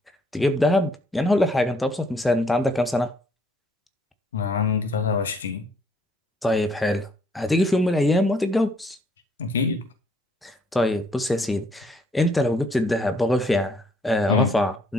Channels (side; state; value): both; normal; correlation 0.65